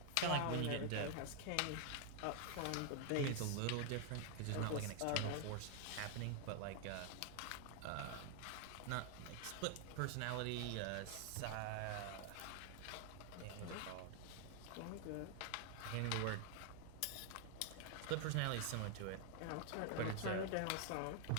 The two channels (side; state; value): both; different; correlation 0.00